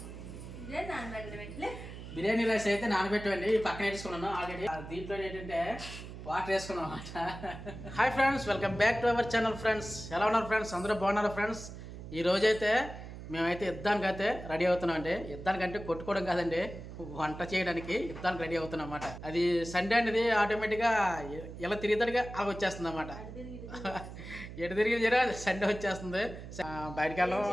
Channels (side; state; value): right; noise; hum, 11 dB below the sound